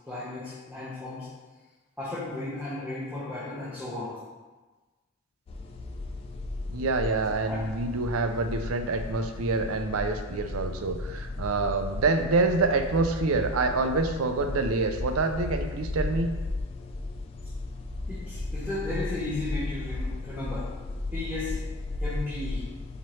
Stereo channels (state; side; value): normal; both; correlation 0.17